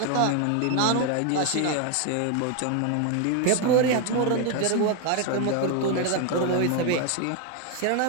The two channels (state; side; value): different; both; correlation 0.01